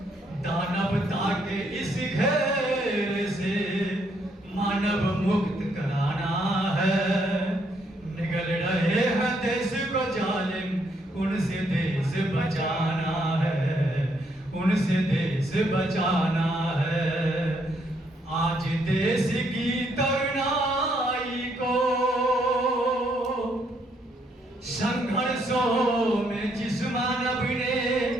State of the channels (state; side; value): normal; both; correlation 0.73